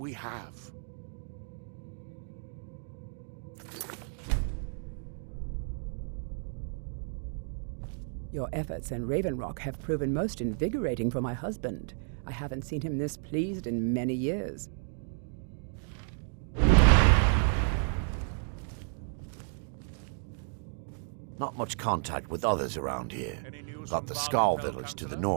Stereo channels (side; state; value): left; silent; 56 dB below the other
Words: have. Your efforts in Ravenrock have proven most invigorating for my husband. I haven't seen him this pleased in many years. Not much contact with others around here. Got the Skarl village to the